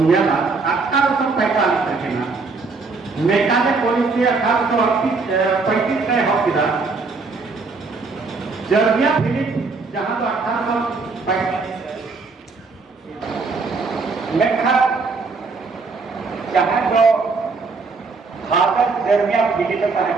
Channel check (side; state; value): left; quieter; 4.3 dB